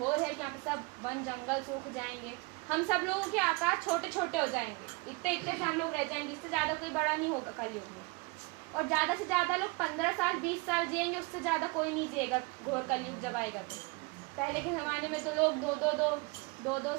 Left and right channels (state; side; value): quieter; left; 27.2 dB